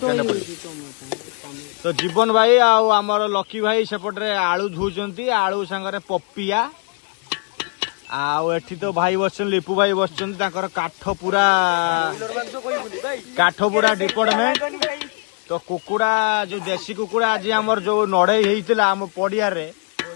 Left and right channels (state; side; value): quieter; right; 39.3 dB